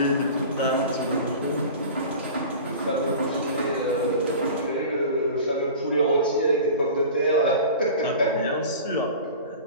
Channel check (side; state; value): both; inverted; correlation -0.37